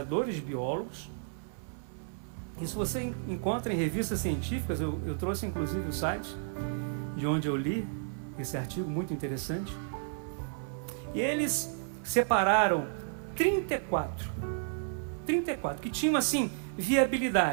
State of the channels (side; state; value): left; silent; 56 dB below the other